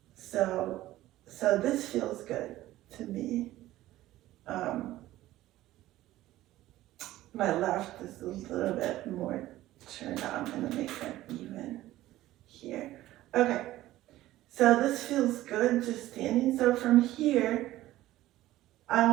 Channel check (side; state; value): left; quieter; 15.5 dB